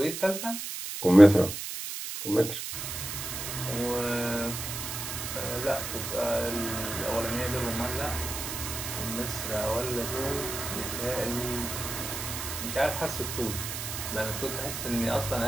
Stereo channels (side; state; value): right; noise; hiss, 6 dB below the sound